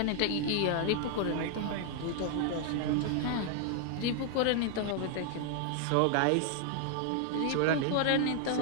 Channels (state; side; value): different; both; correlation 0.00